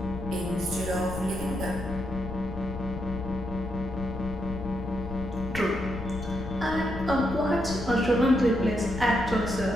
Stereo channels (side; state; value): left; noise; rumble, 8 dB below the sound